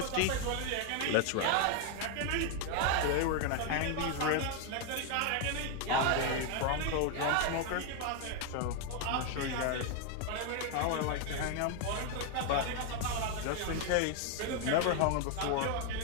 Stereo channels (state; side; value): different; both; correlation 0.01